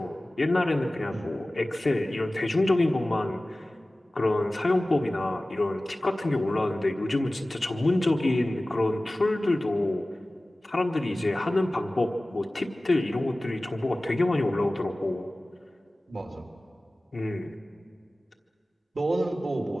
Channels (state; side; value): normal; both; correlation 0.97